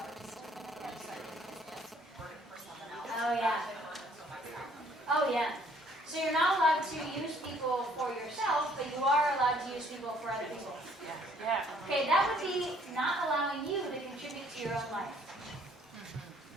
For someone else. Oh, yeah. Oh, yeah. So you're not allowed to use people for yourself, but you are allowed to use people for other people. Yeah. Okay, that would be not allowing you to contribute to your own life.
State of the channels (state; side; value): normal; both; correlation 0.61